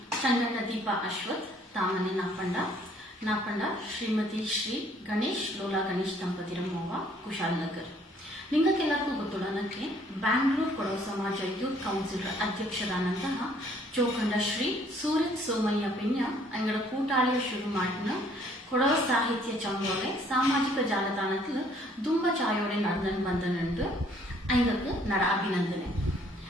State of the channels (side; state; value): both; normal; correlation 0.61